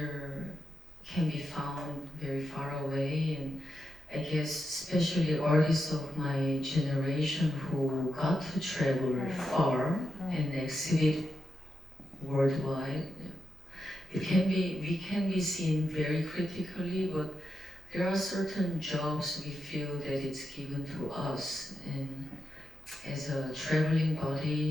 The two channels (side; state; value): both; normal; correlation 0.87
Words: can be found very far away, and I guess especially artists of my generation who got to travel far and exhibit worldwide, we can be seen very critically, but there are certain jobs we feel that it's given to us, and as a traveling